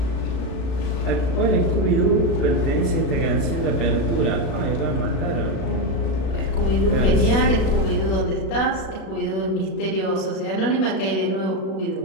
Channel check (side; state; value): right; late; 36 ms